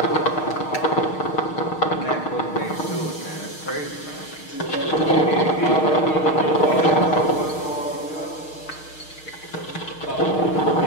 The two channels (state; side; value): late; right; 6.5 ms